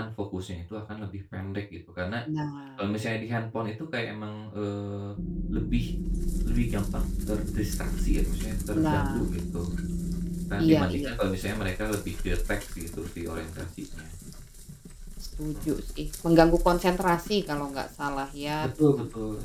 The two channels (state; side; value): identical; both; correlation 1.00